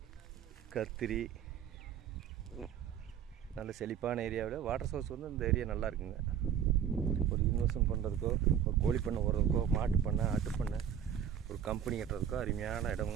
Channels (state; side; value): quieter; left; 8.9 dB